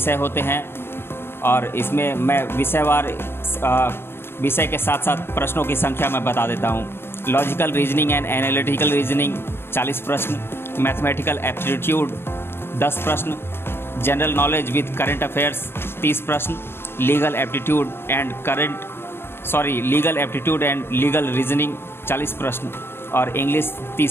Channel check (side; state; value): right; late; 0.11 ms